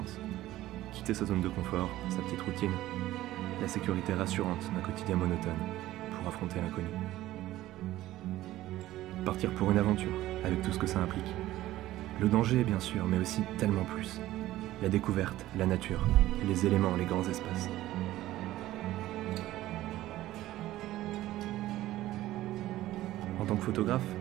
Quitter sa zone de confort, sa petite routine, la sécurité rassurante d'un quotidien monotone, pour affronter l'inconnu. Partir pour une aventure, avec tout ce que ça implique. Le danger, bien sûr, mais aussi tellement plus. La découverte, la nature, les éléments, les grands espaces. En tant que photographe,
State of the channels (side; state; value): left; quieter; 15.3 dB